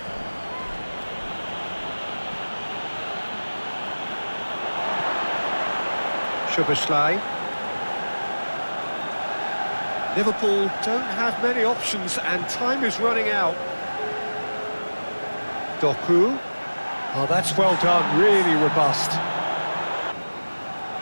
Szoboszlai. Liverpool don't have many options and time is running out. Doku. Oh, that's well done, really robust.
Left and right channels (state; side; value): inverted; both; correlation -1.00